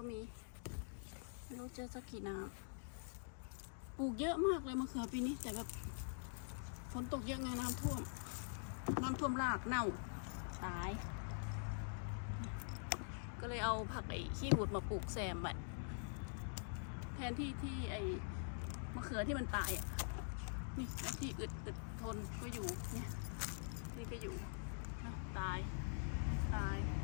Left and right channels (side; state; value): right; silent; digital silence